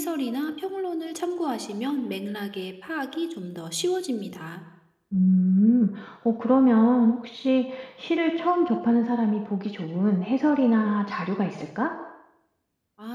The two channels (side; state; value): both; identical; correlation 1.00